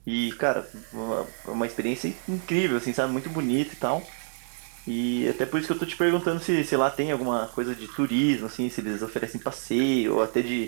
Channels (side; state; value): left; silent; 60 dB below the other